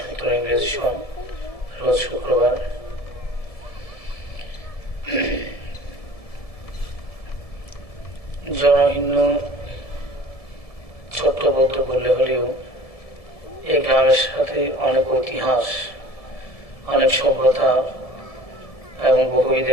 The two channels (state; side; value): late; right; 1.7 ms